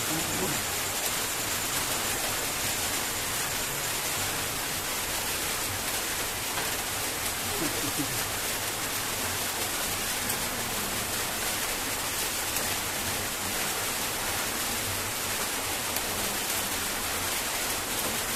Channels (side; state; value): both; identical; correlation 1.00